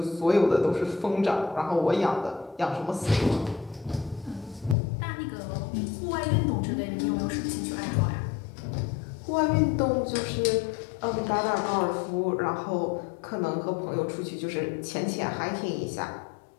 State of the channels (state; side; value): drops out; right; at 4.8 s